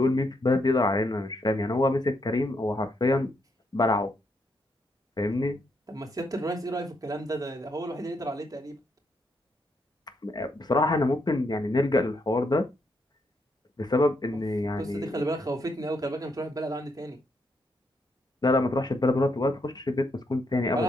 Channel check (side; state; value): both; normal; correlation 0.77